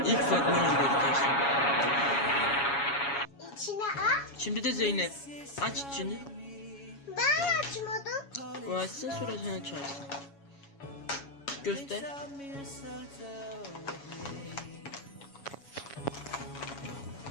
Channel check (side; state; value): right; late; 7.2 ms